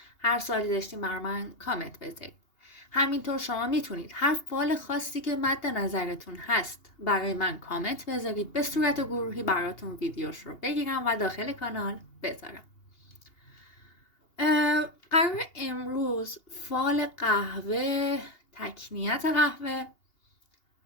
هر سوالی داشتین برای من کامنت بذارید. همینطور شما میتونید هر فال خاصی که مد نظرتون هست برای من کامنت بذارید، به صورت گروهی براتون ویدیوش رو بگیرم و داخل کانال بذارم. قرار امروز فال قهوه، تکنیت قهوه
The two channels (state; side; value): late; right; 2.8 ms